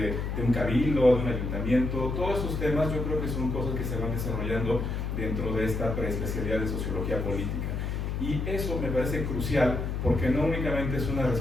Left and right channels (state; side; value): noise; left; hum, 2 dB below the sound